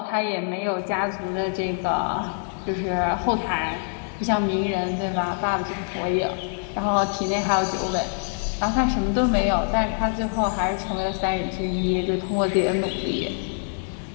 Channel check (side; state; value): right; silent; 58 dB below the other